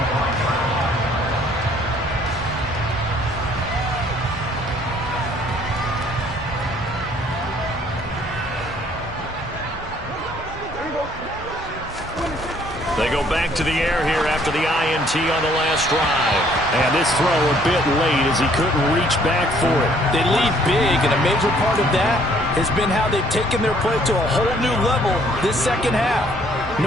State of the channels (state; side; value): normal; both; correlation 0.61